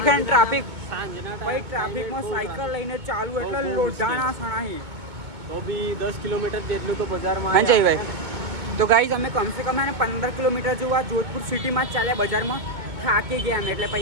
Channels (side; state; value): left; late; 2.2 ms